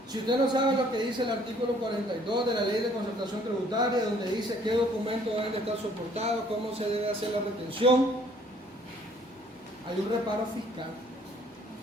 Si usted no sabe lo que dice el artículo 42 de la Ley de Concertación Tributaria, donde dice qué documentos deben de estar soportados, cómo se debe hacer la retención, hay un reparo fiscal.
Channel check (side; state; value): both; normal; correlation 0.60